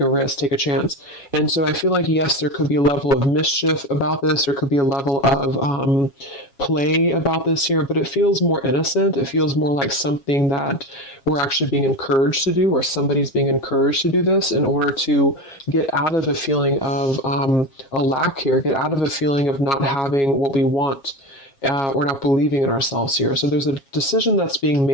risk, take a chance. And so I feel like, yes, there could be a level of mischief about this. There could be a level of play about this here, but it feels more innocent. It feels more like something that we're actually being encouraged to do, or somebody's being encouraged to do this in order to get out of a feeling of a lack here, get out of a feeling of not having what we want. Or not believing in ourselves here. So there's a decision that's being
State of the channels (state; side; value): late; right; 7.2 ms